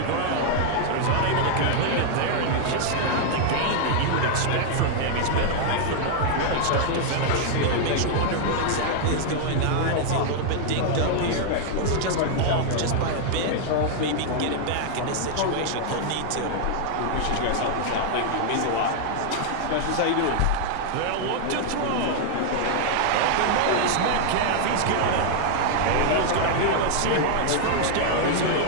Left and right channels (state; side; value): different; both; correlation 0.00